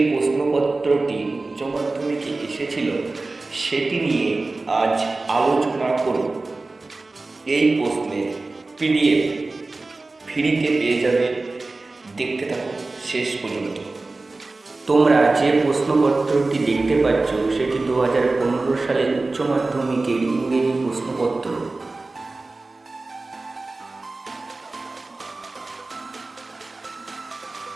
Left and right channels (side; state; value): left; quieter; 3.4 dB